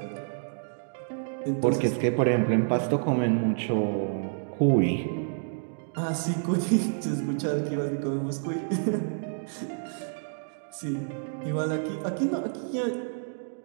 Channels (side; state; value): left; silent; digital silence